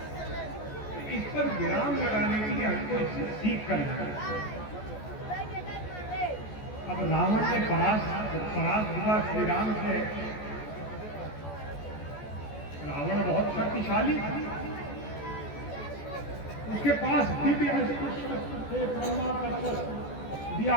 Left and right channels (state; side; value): late; right; 14 ms